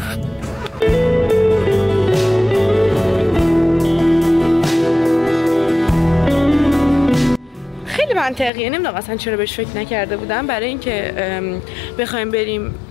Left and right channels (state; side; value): drops out; right; at 8.5 s